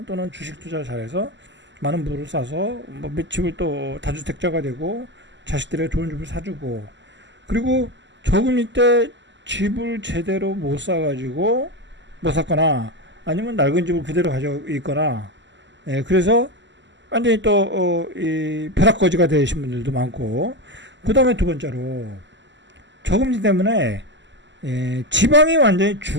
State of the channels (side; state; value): left; late; 0.53 ms